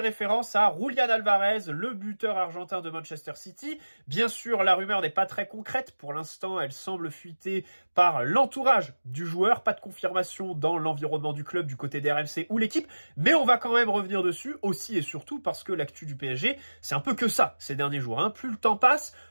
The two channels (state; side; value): inverted; both; correlation -1.00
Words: à Julián Alvarez, le buteur argentin de Manchester City. Bien sûr, la rumeur n'est pas très concrète, pour l'instant elle semble fuiter par l'entourage du joueur, pas de confirmation dans l'environnement du club du côté des RMC ou l'équipe, mais on va quand même revenir dessus aussi et surtout parce que l'actu du PSG, c'est un peu que ça ces derniers jours. Plus le temps passe,